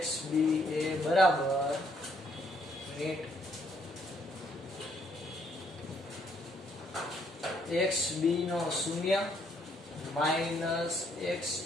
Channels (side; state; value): both; normal; correlation 0.69